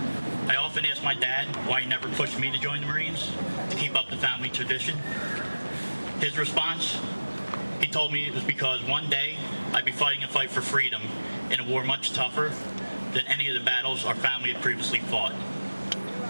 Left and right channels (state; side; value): inverted; both; correlation -1.00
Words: I often ask my dad why he never pushed me to join the Marines to keep up the family tradition. His response, he told me it was because one day I'd be fighting a fight for freedom in a war much tougher than any of the battles our family had previously fought.